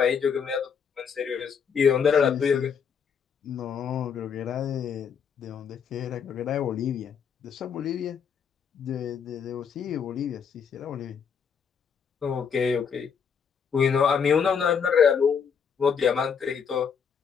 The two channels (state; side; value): quieter; right; 6.8 dB